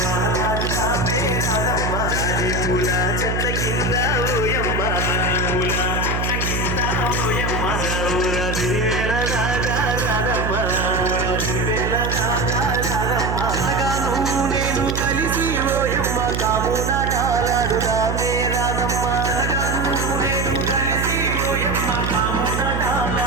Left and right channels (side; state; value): right; noise; hum, 1 dB below the sound